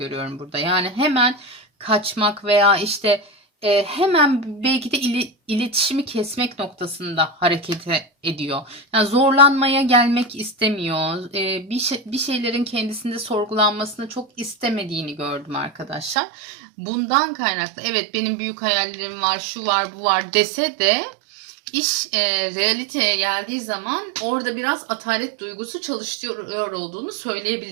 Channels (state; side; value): drops out; left; at 16.2 s